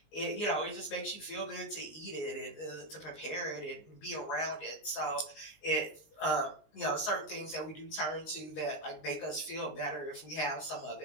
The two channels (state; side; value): late; right; 19 ms